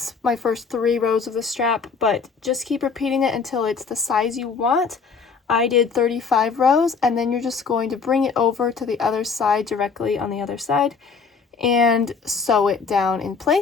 my first 3 rows of the strap, but just keep repeating it until it's the size you want. I did 35 rows, and then you're just going to bring it over to the other side, directly on the other side, and sew it down in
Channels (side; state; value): right; quieter; 5.3 dB